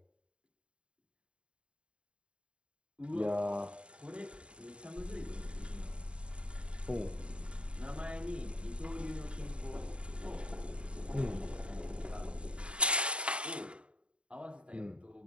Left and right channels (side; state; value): left; late; 0.056 ms